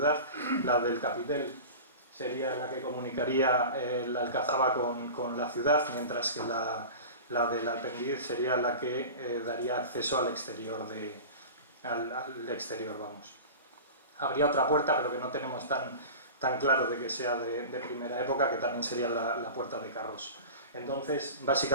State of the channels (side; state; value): both; inverted; correlation -0.33